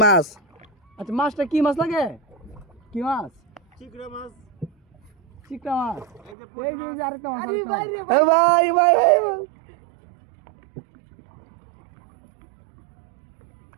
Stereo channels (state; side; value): drops out; left; at 6.4 s